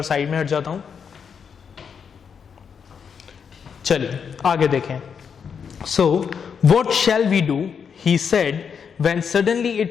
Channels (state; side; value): quieter; right; 6.8 dB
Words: साइड में हट जाता हूं। चलिए आगे देखें। So what shall we do, he said when suddenly